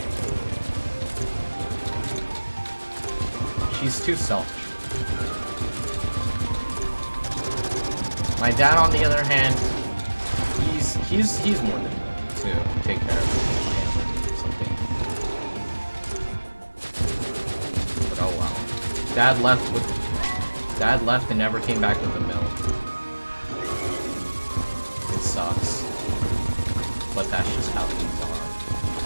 She's too selfish for me. My dad, on the other hand, he's more than willing to take care of me if I ever need something. But oh well. Dad left and never came back with the milk. It sucks. But that's just how things are.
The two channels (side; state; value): both; inverted; correlation -1.00